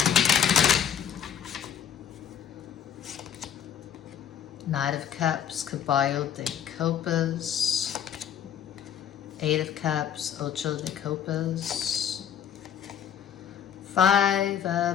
Knight of Cups, Caballo de Copas, 8 of Cups, Ocho de Copas, 5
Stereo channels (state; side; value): quieter; right; 9.0 dB